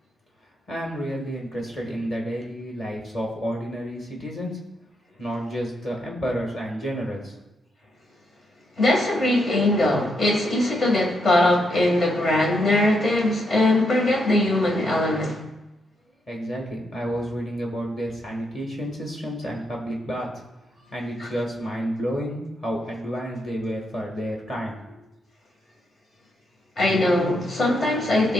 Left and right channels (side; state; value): both; normal; correlation 0.79